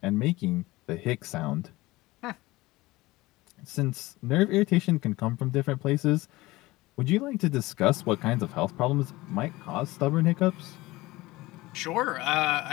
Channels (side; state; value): right; quieter; 19.8 dB